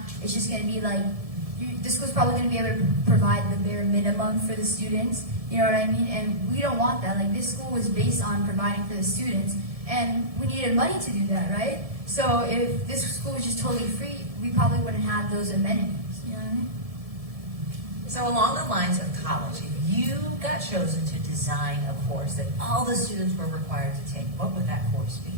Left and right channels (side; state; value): left; late; 1.7 ms